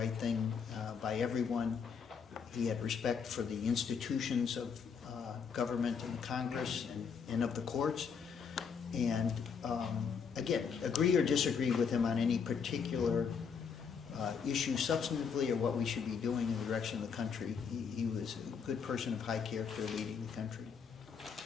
thing by everyone. He had respect for the institutions of government and Congress and of the courts. And again, agree or disagree with him on any particular issue substantively or what we should be doing in the direction of the country. He was a good person of high character leading the country.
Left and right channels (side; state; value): right; quieter; 6.3 dB